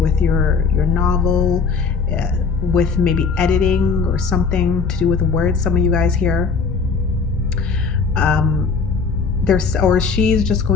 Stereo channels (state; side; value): quieter; right; 5.1 dB